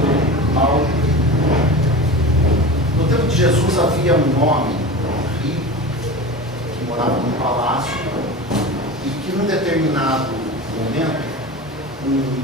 mal. No tempo de Jesus havia um homem rico que morava num palácio e que num determinado momento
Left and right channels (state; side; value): normal; both; correlation 0.31